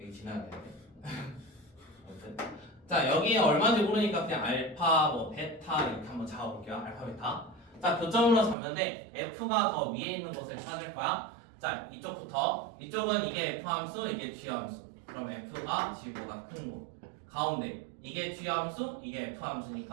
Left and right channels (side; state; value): left; drops out; at 8.6 s